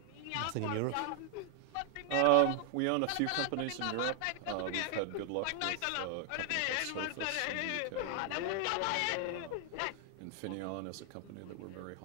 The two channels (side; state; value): both; different; correlation 0.00